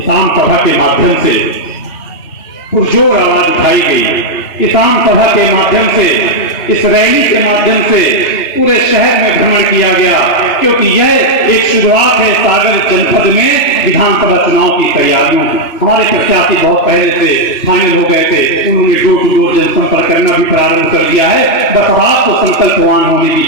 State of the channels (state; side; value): late; right; 3.1 ms